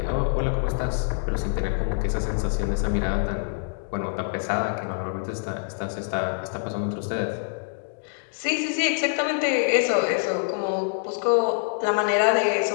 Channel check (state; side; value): silent; right; digital silence